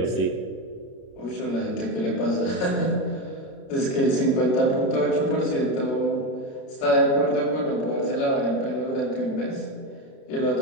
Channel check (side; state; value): right; late; 32 ms